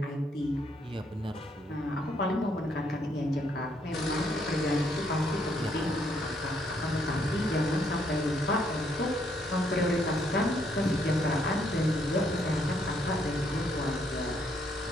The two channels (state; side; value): normal; both; correlation 0.71